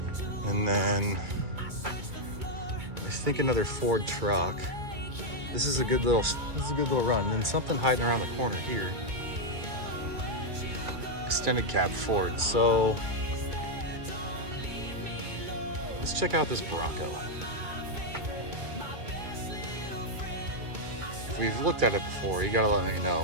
and then I think another Ford truck. This is a good little run. And then something hiding around the corner here. Extended cab Ford. So let's check out this Bronco. If we've looked at it before, you gotta let me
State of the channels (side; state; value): left; late; 2.2 ms